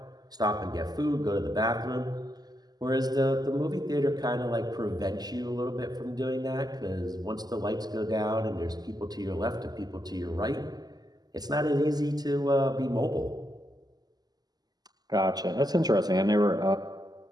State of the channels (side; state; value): left; late; 0.19 ms